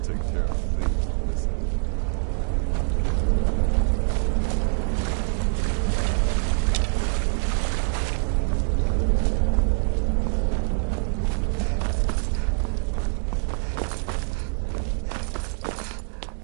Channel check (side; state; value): left; silent; 62 dB below the other